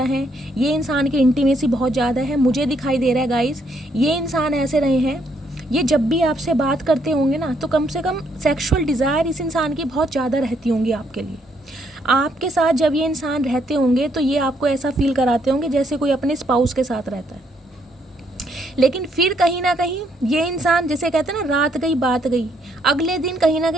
है, ये इंसान की इंटीमेसी बहुत ज़्यादा है, मुझे दिखाई दे रहा है गाइस। ये इंसान ऐसे रहे हैं, ये जब भी आपसे बात करते होंगे ना तो कम से कम सेक्सुअल डिज़ायर इस इंसान की बहुत ज़्यादा रहती होंगी आपके लिए। आपके साथ जब ये इंसान रहते होंगे तो ये आपको ऐसा फील कराते होंगे जैसे कोई अपने स्पाउस के साथ रहता है। लेकिन फिर कहीं ना कहीं ये इंसान, जैसे कहते हैं ना रात गई बात गई, अगले दिन कहीं ना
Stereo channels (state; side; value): normal; both; correlation 0.72